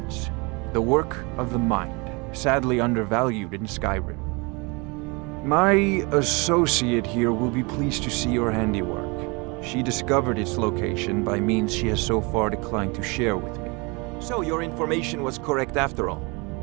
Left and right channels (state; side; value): quieter; left; 28.5 dB